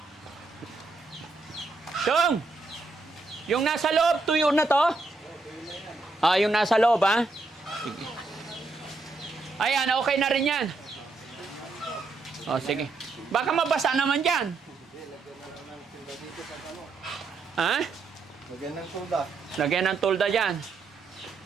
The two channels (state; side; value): quieter; left; 3.7 dB